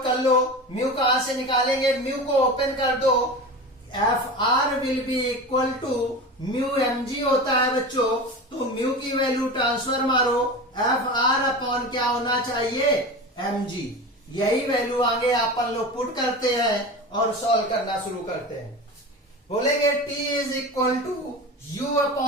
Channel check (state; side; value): normal; both; correlation 0.29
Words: कर लो। म्यू कहां से निकालेंगे, म्यू को ओपन कर दो। Fr will be equal to mu mg होता है बच्चों। तो म्यू की वैल्यू ट्रांसफर मारो, Fr अपॉन क्या होना चाहिए, mg। यही वैल्यू आगे अपन लोग पुट करते हैं और सॉल्व करना शुरू करते हैं। बोलेंगे t is equal to u